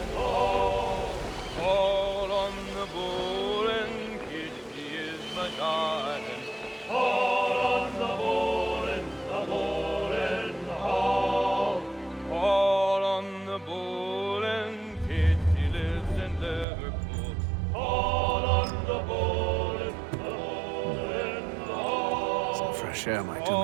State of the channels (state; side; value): drops out; left; at 16.7 s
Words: Fresh air might do